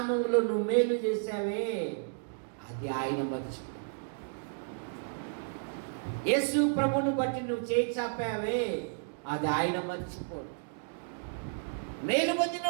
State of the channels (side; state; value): left; silent; digital silence